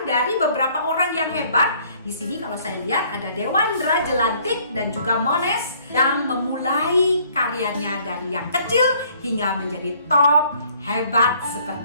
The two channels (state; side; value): inverted; both; correlation -0.60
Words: dari beberapa orang yang hebat. Di sini kalau saya lihat ada Dewandra Jelantik dan juga Mones yang memulai karyanya dari yang kecil hingga menjadi top hebat